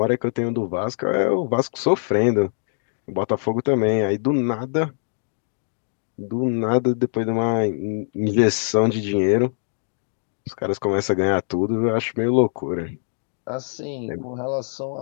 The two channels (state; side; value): silent; right; digital silence